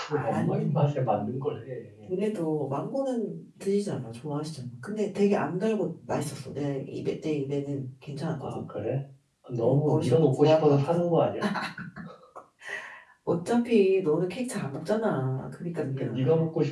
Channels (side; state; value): both; identical; correlation 1.00